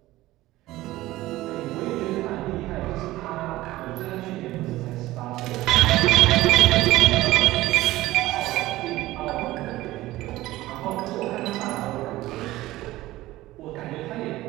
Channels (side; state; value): left; quieter; 17.1 dB